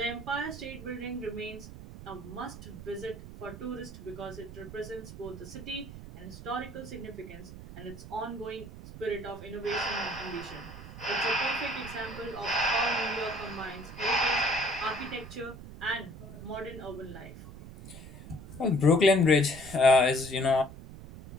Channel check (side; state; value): right; noise; rumble, 13 dB below the sound